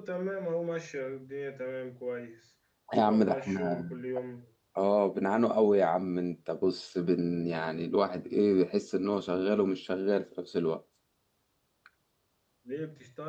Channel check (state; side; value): identical; both; correlation 1.00